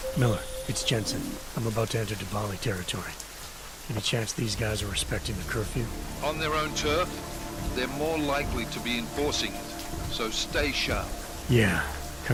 Miller, it's Jensen. I'm about to enter Dvali territory. Any chance these guys are respecting the curfew? On their own turf, they're more likely to be enforcing it, so stay sharp. Yeah,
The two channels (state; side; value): identical; both; correlation 1.00